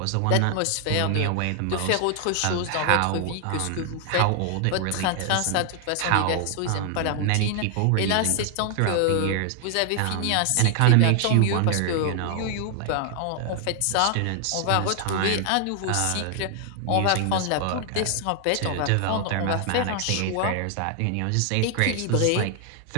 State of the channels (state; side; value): different; both; correlation 0.00